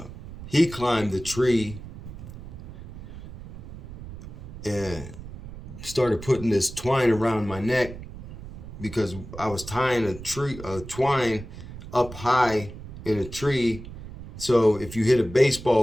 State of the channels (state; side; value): noise; right; rumble, 13 dB below the sound